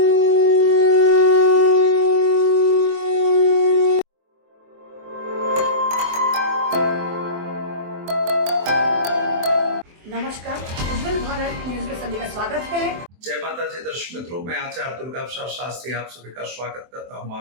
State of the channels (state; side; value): late; left; 24 ms